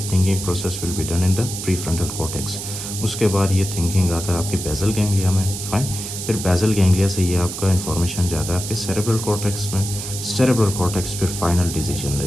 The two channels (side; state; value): right; noise; hiss, 7 dB below the sound